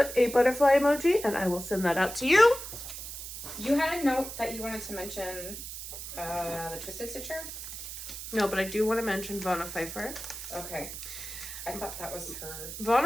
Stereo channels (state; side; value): noise; right; hiss, 9 dB below the sound